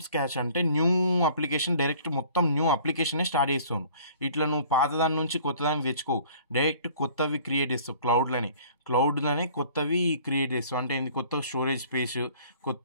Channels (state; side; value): inverted; both; correlation -0.52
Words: స్క్రాచ్ అంటే న్యూ అప్లికేషన్, డైరెక్ట్ మొత్తం న్యూ అప్లికేషనే స్టార్ట్ చేస్తావు. ఇట్లా నువ్వు పాత దాని నుంచి కొత్త దానికి తెచ్చుకోవు, డైరెక్ట్ కొత్తవి క్రియేట్ చేస్తావు. క్లౌడ్లోనే కొత్తవి క్రియేట్ చేస్తావు. అంటే కొత్త స్టోరేజ్ స్పేస్,